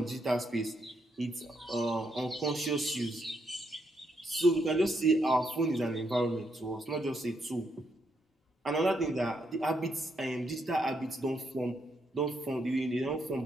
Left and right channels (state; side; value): normal; both; correlation 0.78